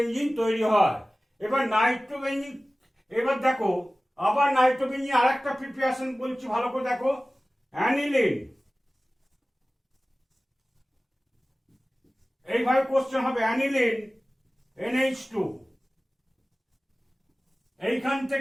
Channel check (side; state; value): both; normal; correlation 0.97